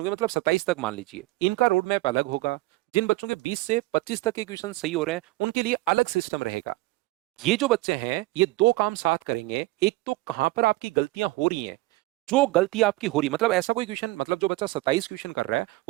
के मतलब 27 तक मान लीजिए, इनका रोड मैप अलग होगा। जिन बच्चों के 20 से 25 तक के क्वेश्चन सही हो रहे हैं, उनके लिए अलग सिस्टम रहेगा। ये जो बच्चे हैं, ये दो काम साथ करेंगे। एक तो कहां पर आपकी गलतियां हो रही हैं, जो गलती आपकी हो रही, मतलब ऐसा कोई क्वेश्चन, मतलब जो बच्चा 27 क्वेश्चन कर रहा है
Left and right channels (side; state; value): left; quieter; 19.8 dB